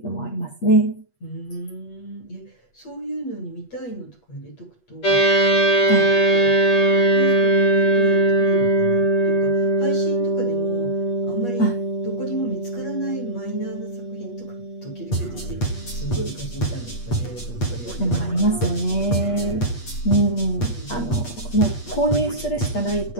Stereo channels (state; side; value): late; right; 8.4 ms